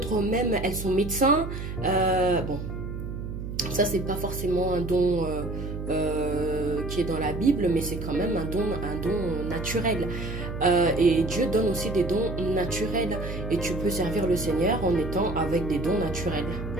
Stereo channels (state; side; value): noise; right; hum, 6 dB below the sound